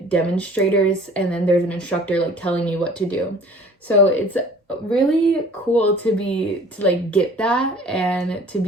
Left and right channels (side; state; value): both; normal; correlation 0.49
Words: demonstrators, and then there's an instructor like telling you what to do. So it's really cool to like get that and to